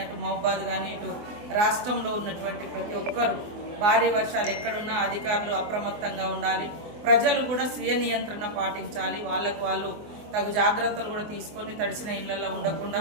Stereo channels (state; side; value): late; left; 24 ms